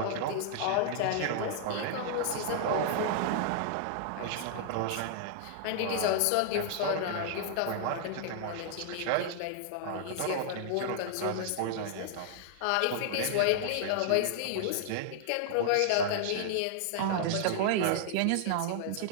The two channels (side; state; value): both; different; correlation -0.01